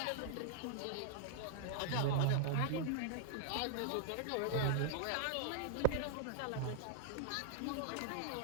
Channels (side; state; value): both; different; correlation -0.01